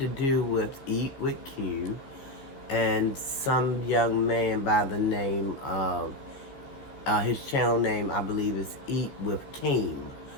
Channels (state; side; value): late; right; 14 ms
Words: do with Eat with Q and some young man by the name of his channel name, I believe, is Eat with Keem,